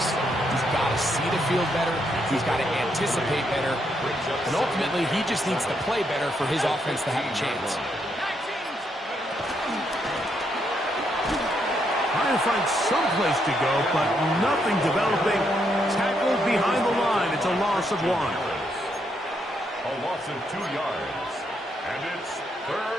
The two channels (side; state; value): both; normal; correlation 0.77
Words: He's got to see the field better. He's got to anticipate better. And ultimately, he just needs to play better for his offense to have a chance. Trying to find some place to go, but nothing developing. Tackled behind the line. It's a loss of 1. A loss of 2 yards. And it's